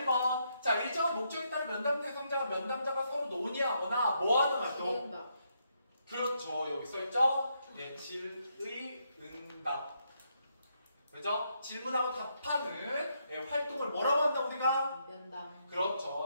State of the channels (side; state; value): both; inverted; correlation -0.78